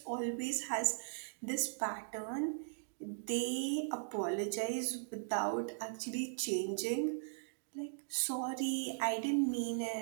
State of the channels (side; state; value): left; silent; digital silence